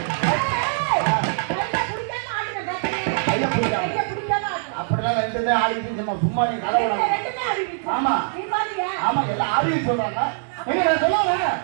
அப்படிலாம் ரெண்டுமே ஆடிட்டு சும்மா நீ கதை. ஆமா ஆமா எல்லாம் ஆடியன்ஸ் சொல்றாங்க. எங்க நான் சொல்லுவேன்.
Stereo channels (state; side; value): silent; left; digital silence